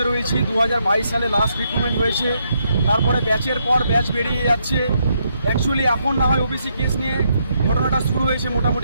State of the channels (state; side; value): inverted; both; correlation -0.77